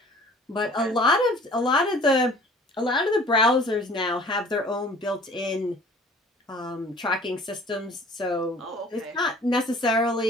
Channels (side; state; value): both; normal; correlation 0.50